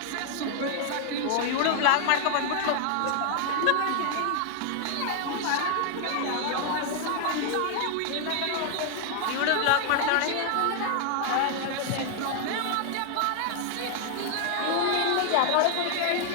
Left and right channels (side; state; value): both; different; correlation 0.00